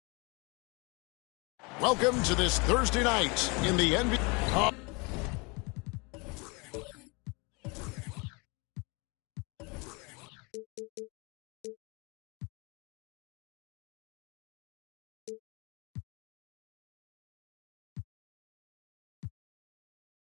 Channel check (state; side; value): quieter; right; 29.2 dB